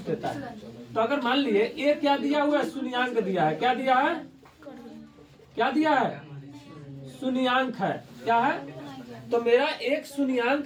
देता है, तो अगर मान लिए ये क्या दिया हुआ है शून्यांक दिया है, क्या दिया है, क्या दिया है शून्यांक है, क्या है। तो मेरा एक शून्यांक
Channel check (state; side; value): identical; both; correlation 1.00